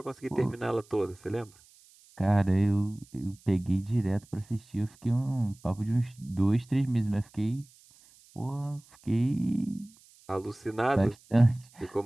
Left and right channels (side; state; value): right; noise; hiss, 27 dB below the sound